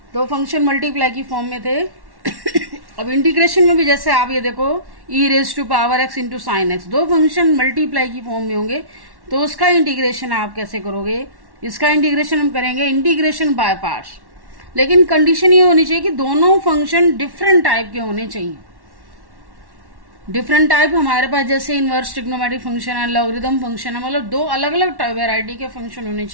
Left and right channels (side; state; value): left; late; 1.1 ms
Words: दो फंक्शन मल्टीप्लाई की फॉर्म में थे। अब इंटीग्रेशन में भी जैसे आप ये देखो e raise to power x into sine x, दो फंक्शन मल्टीप्लाई की फॉर्म में होंगे, तो उसका इंटीग्रेशन आप कैसे करोगे? इसका इंटीग्रेशन हम करेंगे इंटीग्रेशन बाय पार्ट्स, लेकिन कंडीशन ये होनी चाहिए कि दोनों फंक्शन डिफरेंट टाइप के होने चाहिए। डिफरेंट टाइप हमारे पास जैसे इनवर्स ट्रिग्नोमेट्रिक फंक्शन है, लॉगरिथम फंक्शन है, मतलब दो अलग अलग वेराइटी के फंक्शन होने